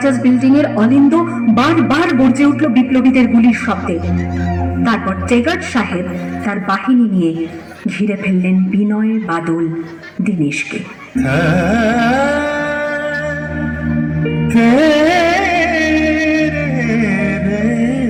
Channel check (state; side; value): identical; both; correlation 1.00